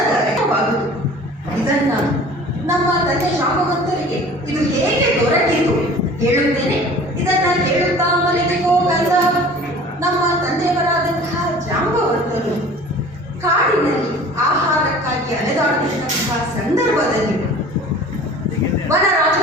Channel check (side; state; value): both; normal; correlation 0.44